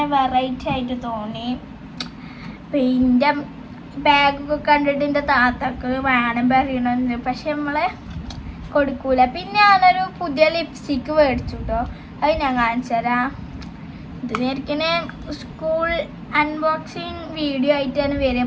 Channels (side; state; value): both; identical; correlation 1.00